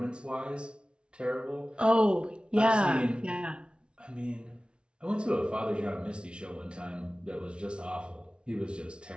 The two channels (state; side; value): late; left; 0.057 ms